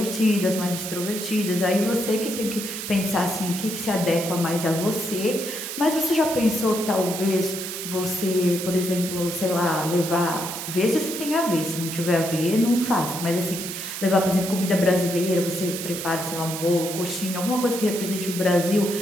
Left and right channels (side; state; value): right; noise; hiss, 6 dB below the sound